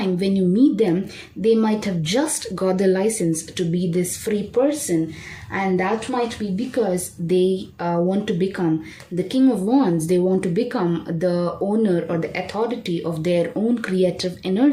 when you meet them, they might have just got the license to be this free person, and that might be because they want to become the King of Wands. They want to become the owner or the authority of their own creative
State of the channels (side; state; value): both; identical; correlation 1.00